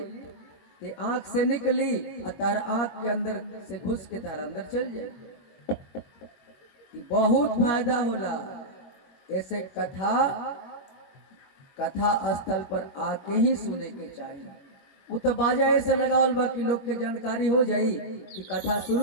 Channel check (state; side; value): late; right; 22 ms